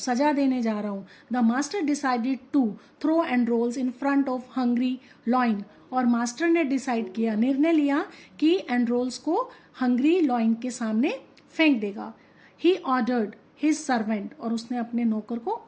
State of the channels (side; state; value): both; identical; correlation 1.00